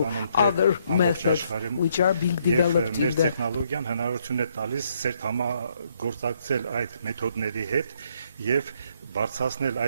other methods which are being developed in the տեխնոլոգիան հնարավորություն է տալիս ծերտ համագործակցել այդ մեթոդների հետ եւ բարձրացնել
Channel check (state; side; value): inverted; both; correlation -0.71